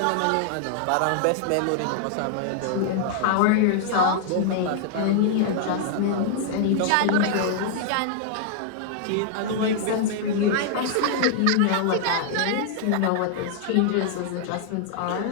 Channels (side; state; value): both; different; correlation -0.01